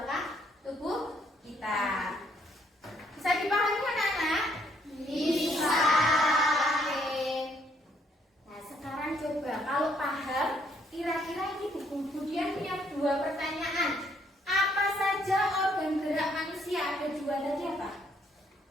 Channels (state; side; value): normal; both; correlation 0.69